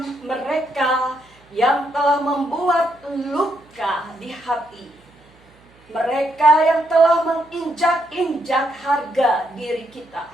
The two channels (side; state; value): right; noise; hum, 30 dB below the sound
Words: mereka yang telah membuat luka di hati. Mereka yang telah menginjak-injak harga diri kita.